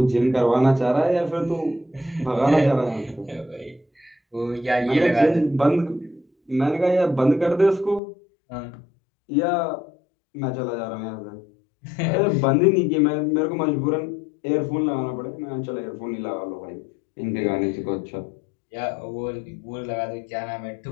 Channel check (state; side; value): drops out; right; at 8.0 s